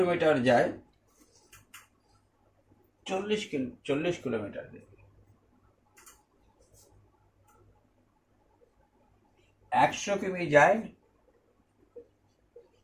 যায় 40 কিলোমিটার বেগে। 100 কিমি যায়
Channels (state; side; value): identical; both; correlation 1.00